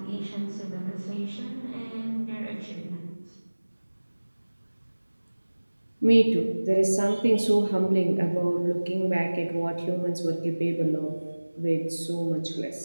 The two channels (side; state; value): both; inverted; correlation -1.00